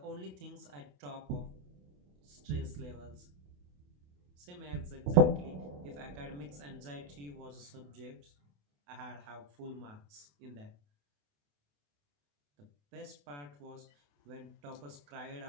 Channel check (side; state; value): left; late; 28 ms